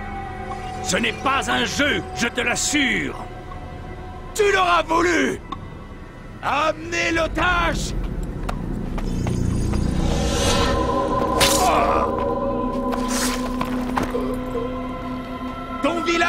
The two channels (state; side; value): identical; both; correlation 1.00